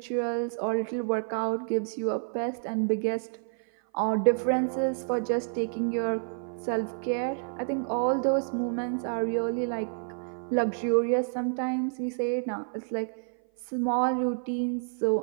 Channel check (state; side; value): silent; left; 56 dB below the other